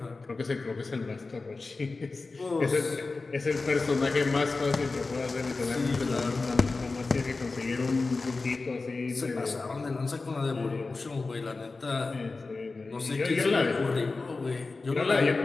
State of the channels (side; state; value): right; quieter; 3.8 dB